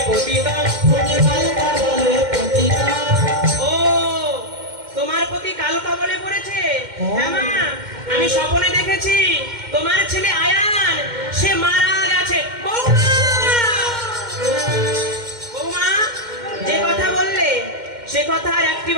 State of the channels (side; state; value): left; late; 2.1 ms